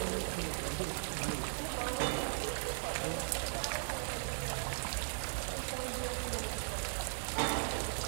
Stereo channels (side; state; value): left; silent; digital silence